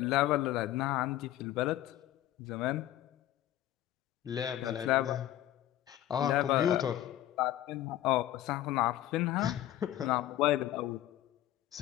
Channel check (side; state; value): right; quieter; 13.6 dB